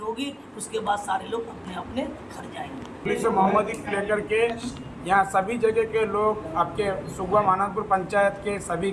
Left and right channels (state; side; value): identical; both; correlation 1.00